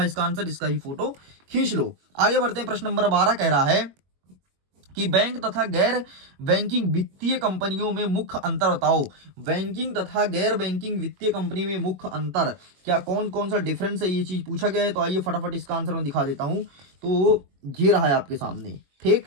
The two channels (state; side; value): late; left; 21 ms